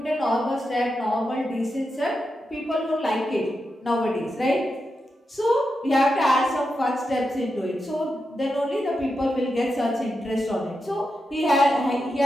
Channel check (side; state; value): both; normal; correlation 0.88